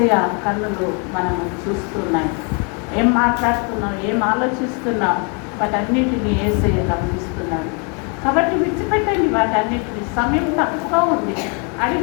కన్నులు మనము చూస్తున్నాయి. ఏం మాట్లాడుతున్నాం, ఏం ఆలోచిస్తున్నాం, వాటన్నిటిని యేసయ్య గమనిస్తున్నాడు. కాబట్టి విడిచిపెట్టండి వాటన్నిటిని. సమయం తక్కువ ఉంది.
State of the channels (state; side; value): quieter; right; 36.1 dB